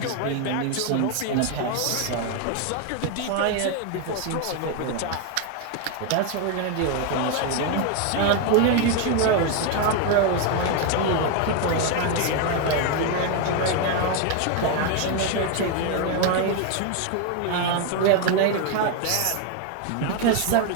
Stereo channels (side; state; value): both; different; correlation 0.01